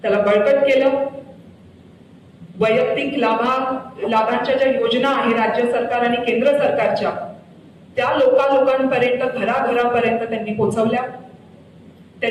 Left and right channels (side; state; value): both; identical; correlation 1.00